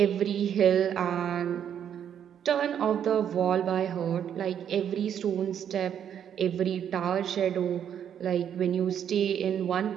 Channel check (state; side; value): quieter; left; 9.0 dB